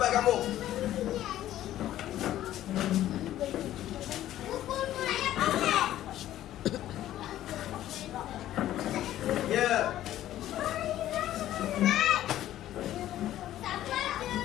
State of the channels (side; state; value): right; quieter; 13.1 dB